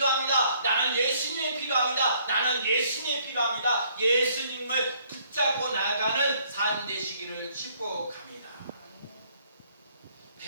나는 예수님이 필요합니다. 나는 예수님이 필요합니다. 예수님을 붙잡고 나가는 삶 되시기를 축복합니다.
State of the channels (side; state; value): both; inverted; correlation -0.65